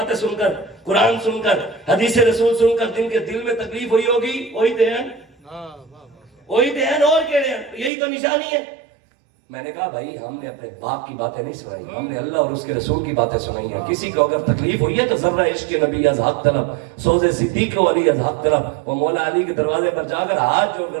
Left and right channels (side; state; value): left; drops out; at 7.9 s